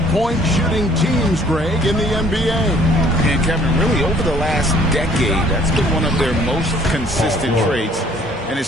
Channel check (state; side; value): normal; both; correlation 0.58